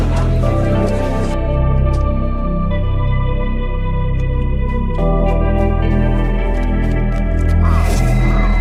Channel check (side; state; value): both; identical; correlation 1.00